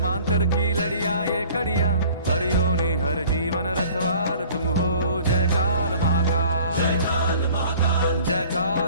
की लड़िया ये कड़िया, हर योनि हर जीवन रखवाल तुम हो। जय काल महाकाल, जय काल महाकाल, जय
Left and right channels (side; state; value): both; inverted; correlation -0.49